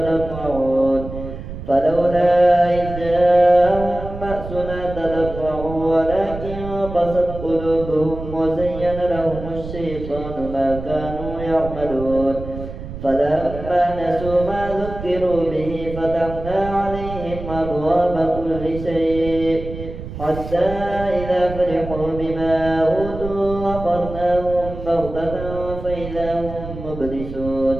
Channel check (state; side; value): noise; right; rumble, 10 dB below the sound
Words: فلولا إذ جاءهم بأسنا تضرعوا ولكن قست قلوبهم وزين لهم الشيطان ما كانوا يعملون فلما نسوا ما ذكروا به فتحنا عليهم أبواب كل شيء حتى إذا فرحوا بما أوتوا أخذناهم بغتة فإذا هم مبلسون